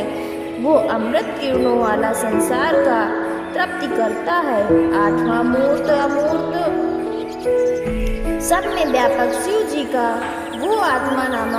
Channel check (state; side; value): identical; both; correlation 1.00